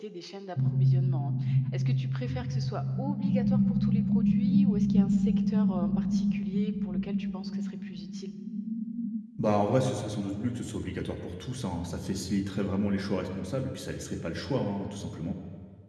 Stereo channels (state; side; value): identical; both; correlation 1.00